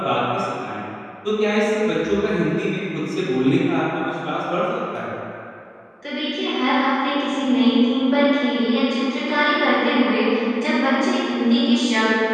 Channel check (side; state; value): both; identical; correlation 1.00